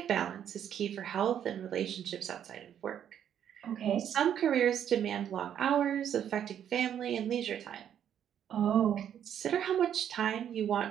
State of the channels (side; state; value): left; quieter; 9.5 dB